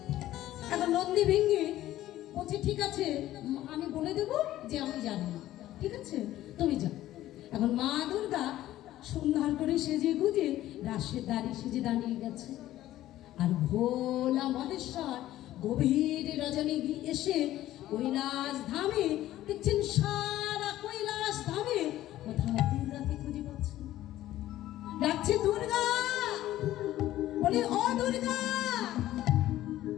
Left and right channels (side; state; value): right; quieter; 14.2 dB